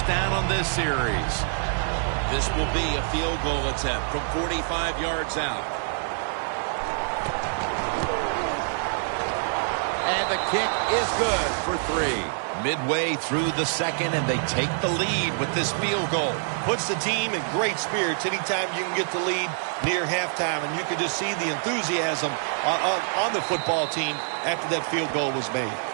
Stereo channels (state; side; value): silent; left; 61 dB below the other